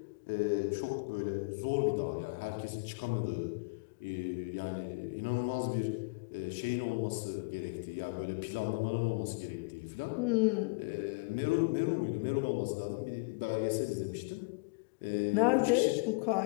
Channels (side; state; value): right; quieter; 32.9 dB